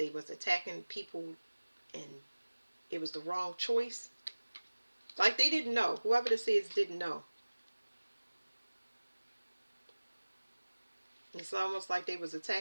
was attacking people and it was the wrong choice. Like they didn't know. Whoever this is didn't know. It's almost like they was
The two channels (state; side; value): inverted; both; correlation -1.00